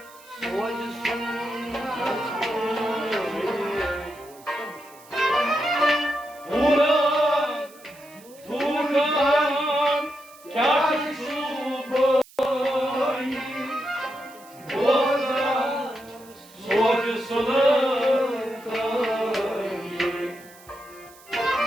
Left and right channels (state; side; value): noise; right; hiss, 24 dB below the sound